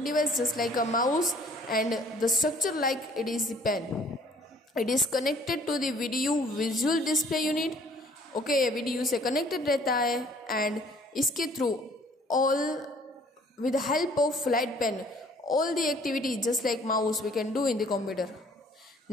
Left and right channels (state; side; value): normal; both; correlation 0.57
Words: device just like a mouse and the structure like it is the pen. It is connected to the video visual display unit. Okay, ये video से connected रहता है and इसके through all with help of flat pen all the activity just like mouse we can do in the computer.